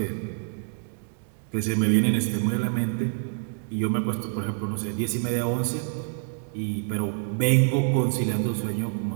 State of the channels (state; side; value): silent; left; digital silence